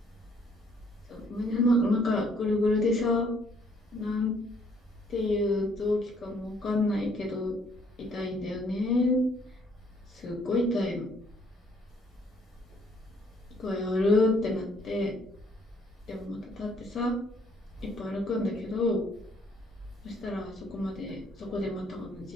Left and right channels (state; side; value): normal; both; correlation 0.65